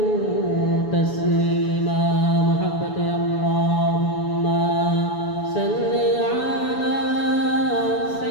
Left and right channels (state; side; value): late; right; 6.9 ms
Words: تسليما محبة اللهم صل على